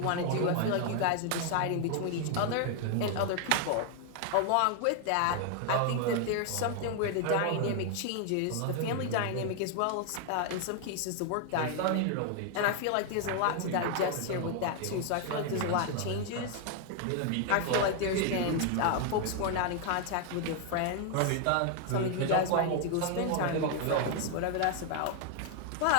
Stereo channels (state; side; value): different; both; correlation 0.00